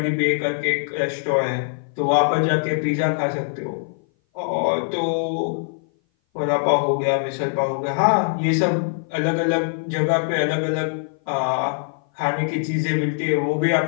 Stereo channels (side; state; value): right; silent; 58 dB below the other